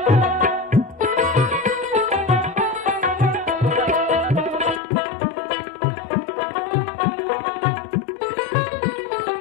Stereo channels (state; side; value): drops out; right; at 4.8 s